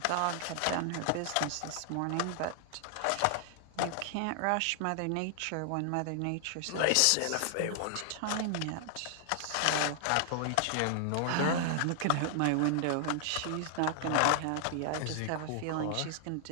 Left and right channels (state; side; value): different; both; correlation 0.00